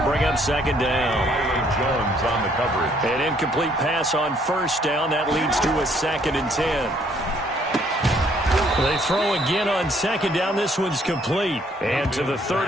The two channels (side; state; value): both; normal; correlation 0.65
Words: bring up 2nd down. Jones on the coverage. An incomplete pass on first down. That leads to a 2nd and 10. They throw again on 2nd down. This one's complete. And to the